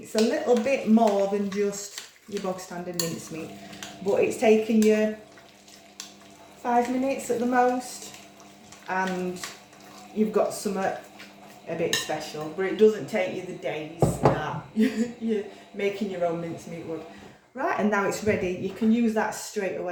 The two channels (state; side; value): identical; both; correlation 1.00